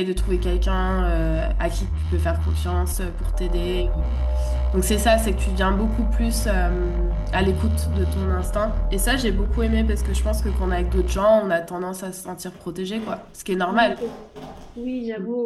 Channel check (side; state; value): both; identical; correlation 1.00